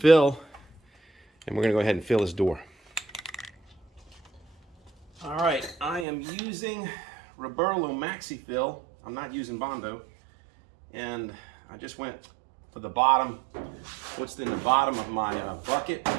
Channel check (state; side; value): drops out; left; at 6.1 s